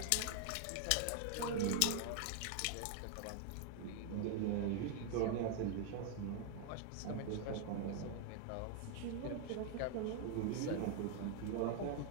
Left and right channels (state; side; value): different; both; correlation 0.00